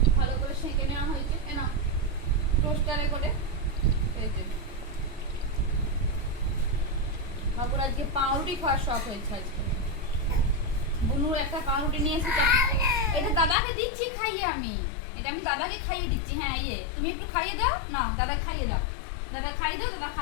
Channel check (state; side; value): drops out; right; at 13.6 s